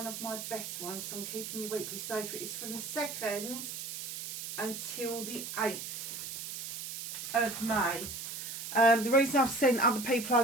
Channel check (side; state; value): right; noise; hiss, 7 dB below the sound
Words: of my best ones, so I'm keeping you weekly. So it's from the 2nd until the 8th. Of May. The reason I've sent other people